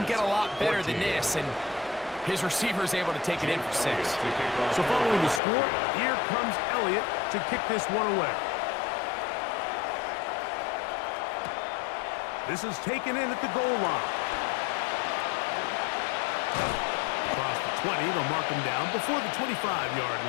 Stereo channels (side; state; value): right; drops out; at 5.4 s